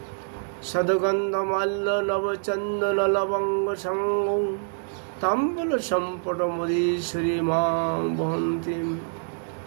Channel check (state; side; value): silent; left; digital silence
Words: সদগন্ধ মাল্য নবচন্দন লবঙ্গ সঙ্গ তাম্বল সম্পট মদীশ্বরী মাং বহন্তি